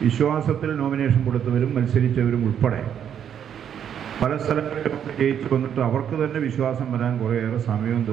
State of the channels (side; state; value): left; quieter; 8.9 dB